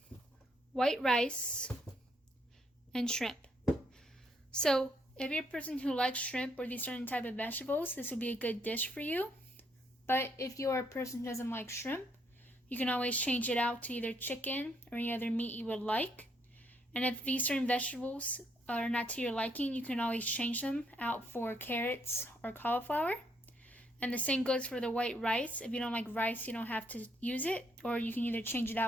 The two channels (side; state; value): both; normal; correlation 0.72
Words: white rice, and shrimp. So if you're a person who likes shrimp or these certain type of vegetables, this would be a good dish for you. But if you're a person who doesn't like shrimp, you can always change it out to either chicken or any other meat you would like. And if these certain vegetables are not to your liking, you can always change them out for carrots or cauliflower. And the same goes for the white rice. If you don't like rice, you don't have to use it, or you can either change it